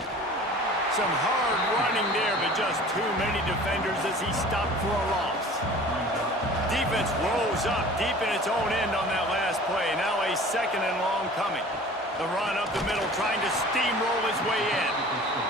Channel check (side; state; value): both; normal; correlation 0.44